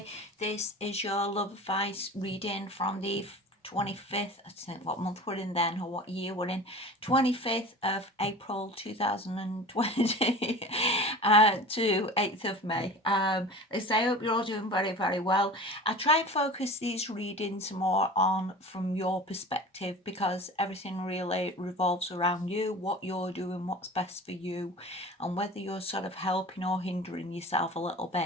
This is your love advice reading from the 25th, I think what month we're in then, or what year we're in, 25th of April 2020 to 8th of May. I hope you're all doing very, very well. I try and focus these readings more on from your perspective because everything really revolves around you, what you're doing, what's best for you, and whether you're sort of helping or hindering yourself a little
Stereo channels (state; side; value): normal; both; correlation 0.37